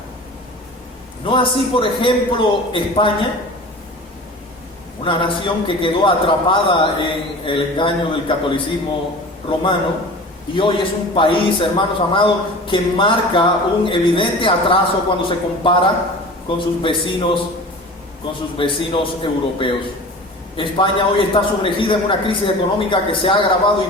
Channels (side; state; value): both; normal; correlation 0.38